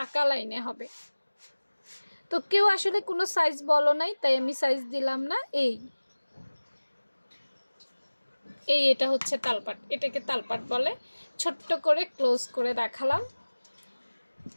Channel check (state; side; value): inverted; both; correlation -1.00